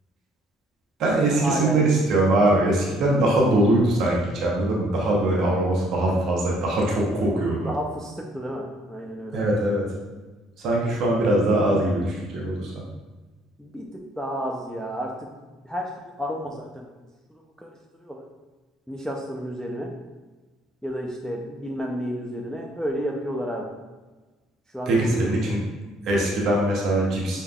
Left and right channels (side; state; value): both; normal; correlation 0.63